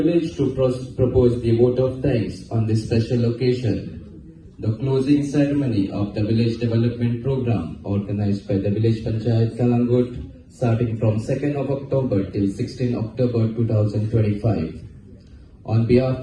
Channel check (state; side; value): identical; both; correlation 1.00